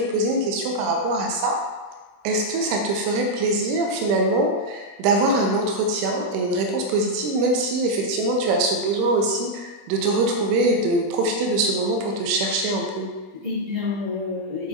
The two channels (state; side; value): late; left; 20 ms